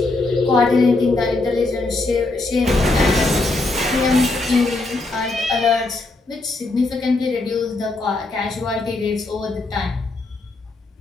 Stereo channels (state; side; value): quieter; right; 3.1 dB